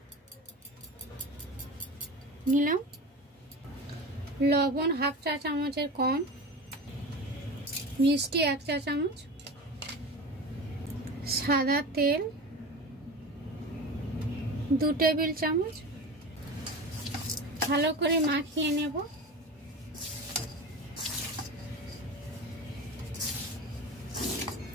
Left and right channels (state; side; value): normal; both; correlation 0.30